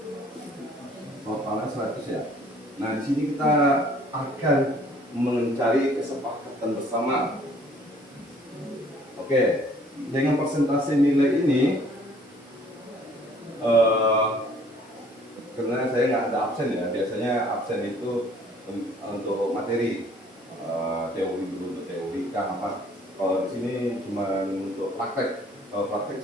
Totalnya 100 ya. Nah, di sini kita akan mencari kesepakatan bersama. Oke, dengan persentase nilai ini, karena saya nggak ada absen ya, biasanya absen itu untuk materi, teori dulu untuk teori kan apa. Kalau di sini cuma untuk praktek. Kalau praktek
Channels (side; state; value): both; normal; correlation 0.57